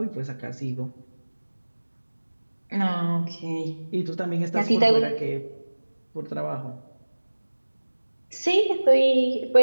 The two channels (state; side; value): inverted; both; correlation -1.00